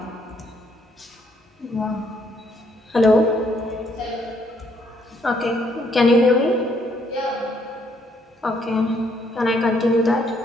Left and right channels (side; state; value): both; normal; correlation 0.70